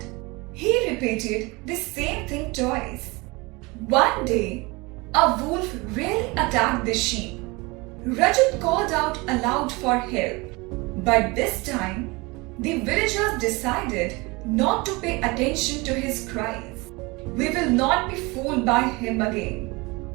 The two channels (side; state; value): left; quieter; 25.0 dB